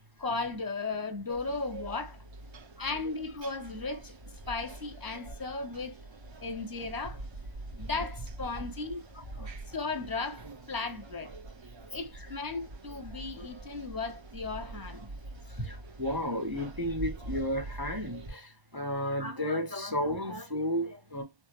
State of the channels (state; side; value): late; left; 1.0 ms